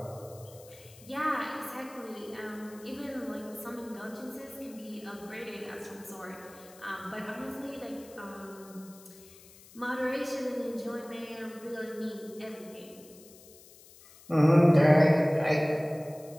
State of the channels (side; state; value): left; noise; hiss, 22 dB below the sound